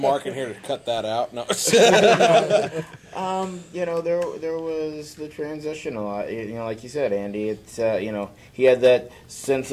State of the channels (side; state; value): both; identical; correlation 1.00